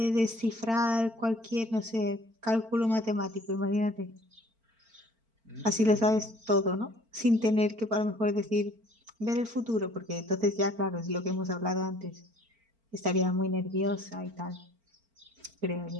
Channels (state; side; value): late; left; 4.4 ms